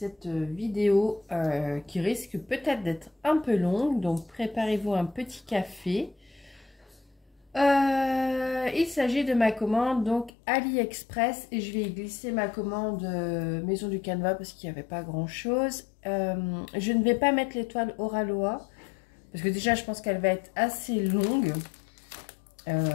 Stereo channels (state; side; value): drops out; right; at 10.3 s